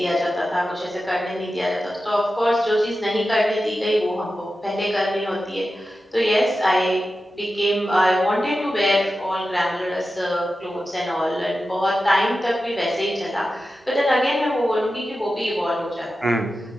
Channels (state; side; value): normal; both; correlation 0.92